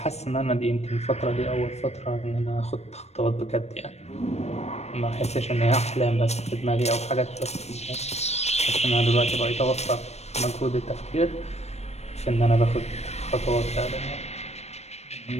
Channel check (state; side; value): late; right; 0.31 ms